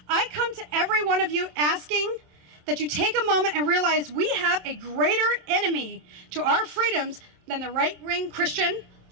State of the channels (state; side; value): late; left; 27 ms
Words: I come to every one of you asking that you take a moment and realize we have a greater enemy to our freedoms than the right-wing Christian,